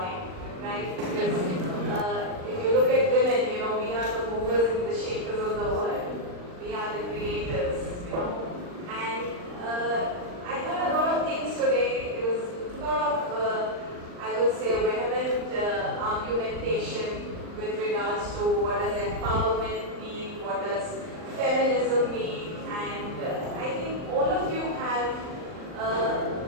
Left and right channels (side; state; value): left; late; 39 ms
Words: right? Because if you look at women, you know, we are the movers and the shapers of the world. We are the creators, you know. And I heard a lot of things today. There was a lot of, I would say, vehement argumentation with regards to what does empowerment mean, what does feminism mean, and I think all of you have,